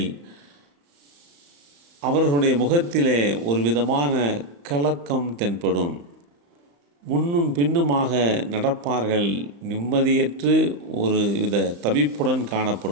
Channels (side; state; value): left; late; 35 ms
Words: அவர்களுடைய முகத்திலே ஒரு விதமான கலக்கம் தென்படும். முன்னும் பின்னுமாக நடப்பார்கள், நிம்மதியற்று ஒரு வித தவிப்புடன்